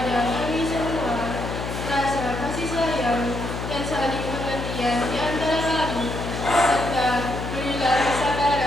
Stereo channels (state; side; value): noise; left; hum, 5 dB below the sound